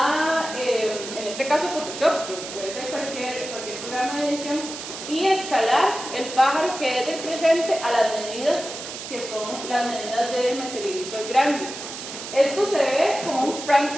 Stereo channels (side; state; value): right; noise; hiss, 9 dB below the sound